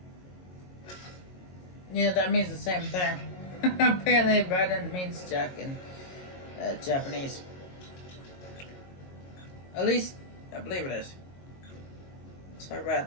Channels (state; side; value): late; right; 22 ms